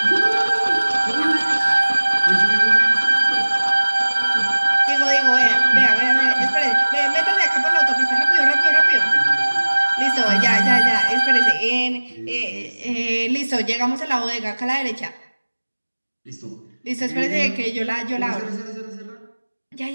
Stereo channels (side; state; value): both; inverted; correlation -1.00